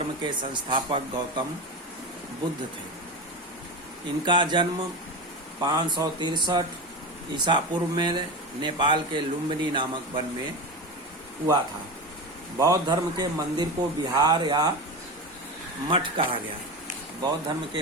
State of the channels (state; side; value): normal; both; correlation 0.23